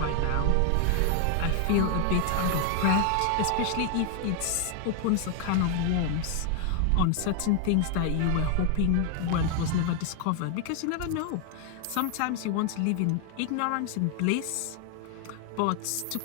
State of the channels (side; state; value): both; different; correlation 0.00